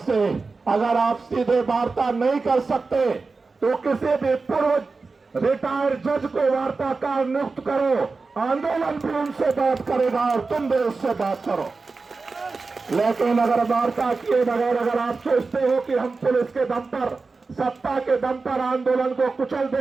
अगर आप सीधे वार्ता नहीं कर सकते तो किसी भी पूर्व रिटायर्ड जज को वार्ताकार नियुक्त करो, आंदोलन भी उनसे बात करेगा और तुम भी उससे बात करो। लेकिन अगर वार्ता किए बगैर अगर आप सोचते हो कि हम पुलिस के दम पर, सत्ता के दम पर आंदोलन को कुचल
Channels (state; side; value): quieter; left; 4.1 dB